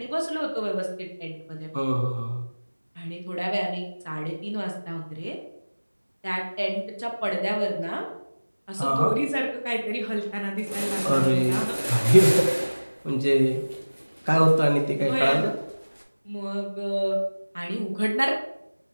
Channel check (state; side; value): inverted; both; correlation -1.00